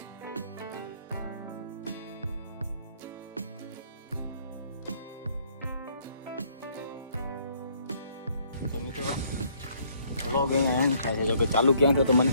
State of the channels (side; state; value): both; inverted; correlation -0.65